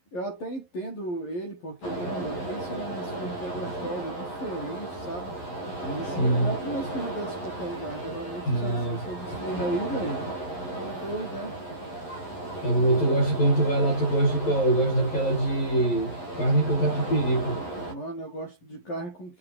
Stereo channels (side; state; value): right; late; 11 ms